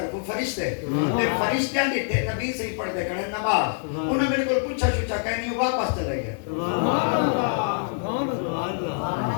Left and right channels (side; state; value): right; silent; 59 dB below the other